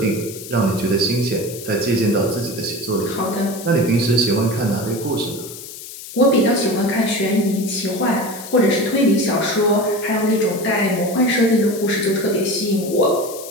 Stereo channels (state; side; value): noise; left; hiss, 13 dB below the sound